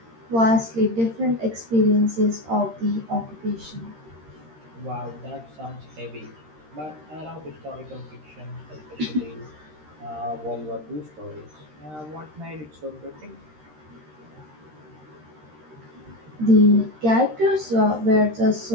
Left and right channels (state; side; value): late; left; 13 ms